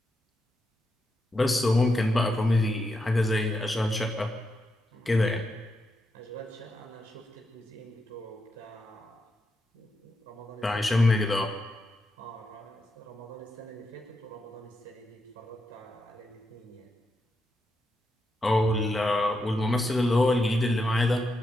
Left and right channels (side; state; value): both; normal; correlation 0.84